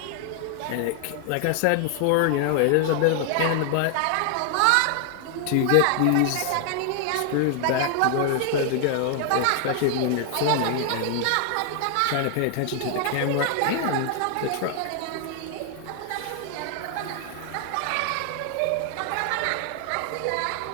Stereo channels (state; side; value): different; both; correlation 0.00